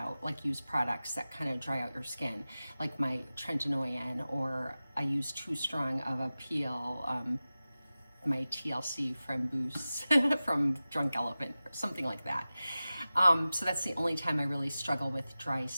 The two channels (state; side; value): inverted; both; correlation -0.96